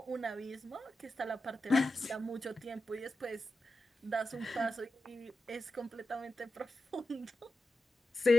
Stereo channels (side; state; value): both; normal; correlation 0.91